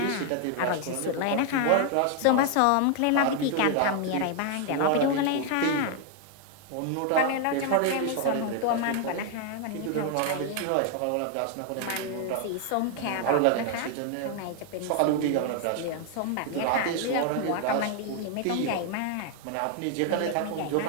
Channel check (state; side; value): different; both; correlation 0.00